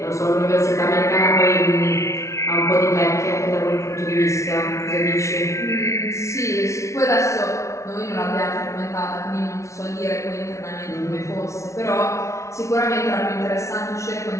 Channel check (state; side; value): late; right; 0.14 ms